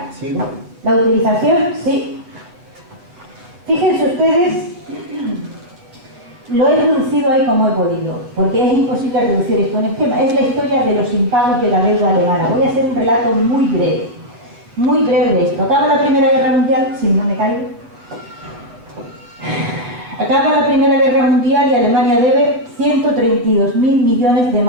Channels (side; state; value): left; late; 8.4 ms